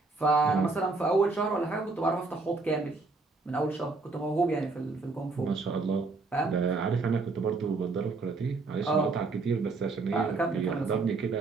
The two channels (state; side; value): quieter; left; 3.8 dB